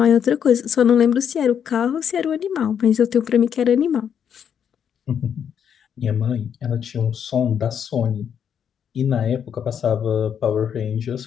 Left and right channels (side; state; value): right; quieter; 8.2 dB